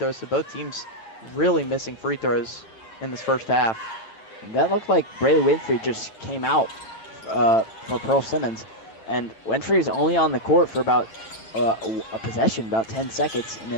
so both teams really missing free throws in this first half. That looked like Braylee Winfrey just came out for Pearl Simmons. And Winfrey is only on the court for about a possession, about 10 seconds, and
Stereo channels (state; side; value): late; right; 9.1 ms